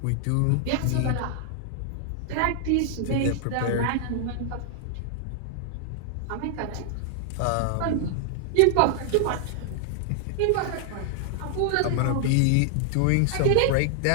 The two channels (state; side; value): different; both; correlation 0.00